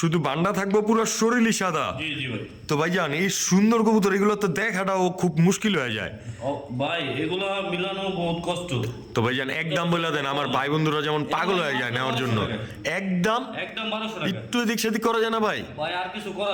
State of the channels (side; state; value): both; identical; correlation 1.00